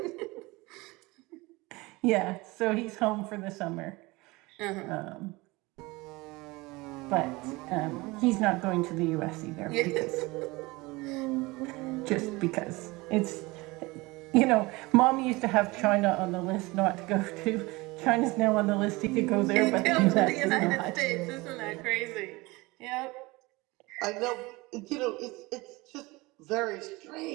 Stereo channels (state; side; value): quieter; left; 22.8 dB